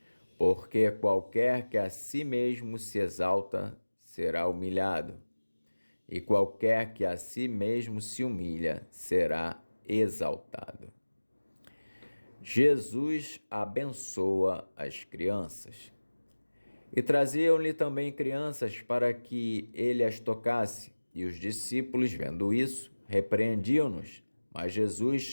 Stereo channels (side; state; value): both; inverted; correlation -1.00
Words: Porque qualquer que a si mesmo se exalta, será humilhado, e qualquer que a si mesmo se humilha, será exaltado. Jesus abençoa as crianças. E traziam-lhe também crianças para que ele as tocasse. E os discípulos, vendo isso, repreendiam-nos. Mas Jesus,